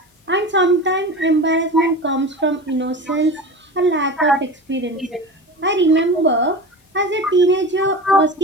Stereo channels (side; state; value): both; normal; correlation 0.30